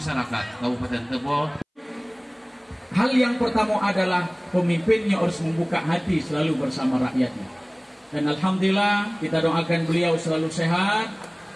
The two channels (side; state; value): both; identical; correlation 1.00